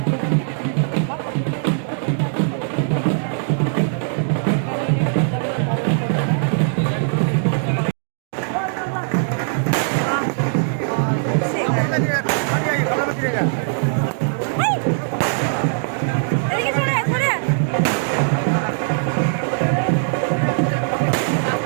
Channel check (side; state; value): left; silent; digital silence